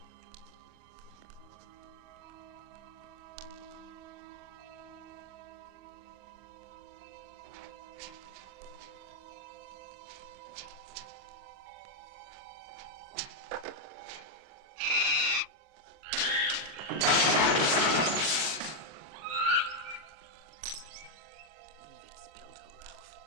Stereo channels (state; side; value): late; left; 39 ms